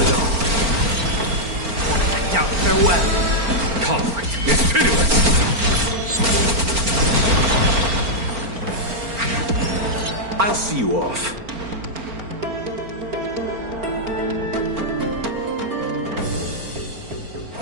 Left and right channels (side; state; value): left; late; 4.4 ms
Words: all. Down, farewell. Conflict is pitiless. I'll see you off.